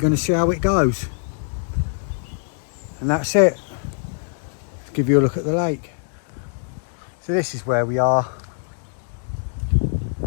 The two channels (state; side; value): silent; right; 63 dB below the other